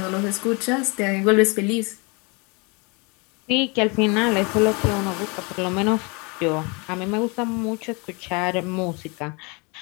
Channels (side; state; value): right; quieter; 30.1 dB